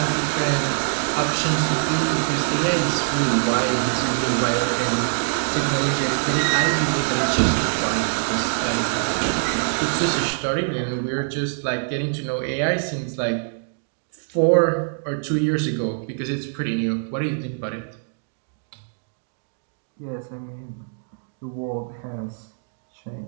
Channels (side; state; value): left; silent; digital silence